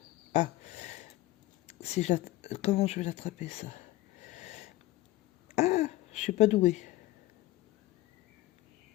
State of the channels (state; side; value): quieter; right; 16.7 dB